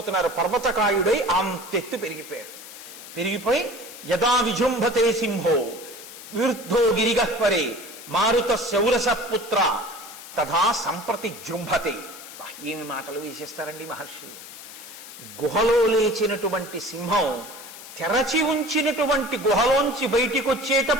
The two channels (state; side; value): noise; left; hiss, 15 dB below the sound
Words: పర్వతకాయుడై అంతెత్తు పెరిగిపోయి యదా విజృంభతే సింహో విరుద్ధో గిరిగహ్వరే మారుత శౌరస పుత్ర తథా సంప్రతి జృంభతే. ఏమి మాటలు వేసేస్తారండి మహర్షి. గుహలో లేచినటువంటి సింహం తెరచి ఉంచినటువంటి గుహలోంచి బయటికి